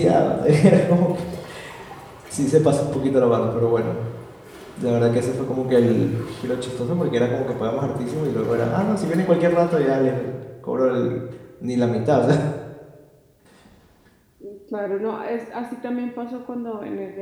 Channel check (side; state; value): both; identical; correlation 1.00